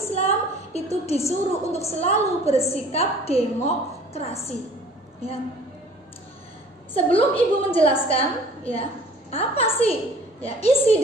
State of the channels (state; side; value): normal; both; correlation 0.51